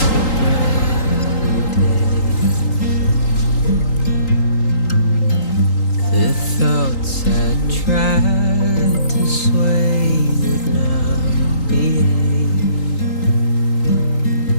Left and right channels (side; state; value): right; late; 3.8 ms